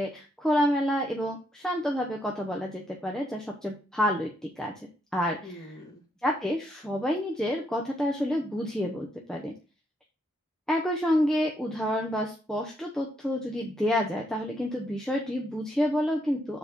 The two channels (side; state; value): both; normal; correlation 0.76